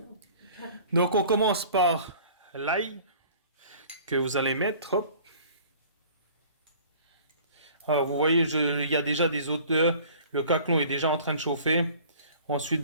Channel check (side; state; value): both; inverted; correlation -0.48